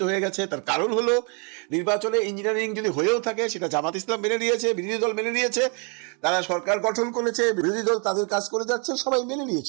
হয়ে গেছে। তার কারণ হলো নির্বাচনে ইঞ্জিনিয়ারিং যদি হয়েও থাকে সেটা জামাত ইসলাম মেনে নিয়েছে, বিরোধী দল মেনে নিয়েছে, তারা সরকার গঠন করেছে, বিরোধী দল তাদের কাজ করে যাচ্ছে, সবাই মেনে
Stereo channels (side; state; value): left; quieter; 36.3 dB